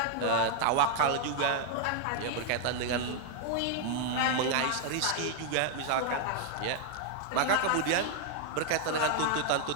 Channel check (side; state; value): both; different; correlation 0.00